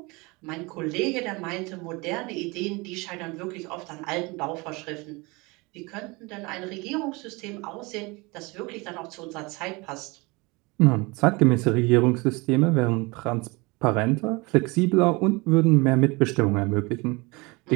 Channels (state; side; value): quieter; left; 25.6 dB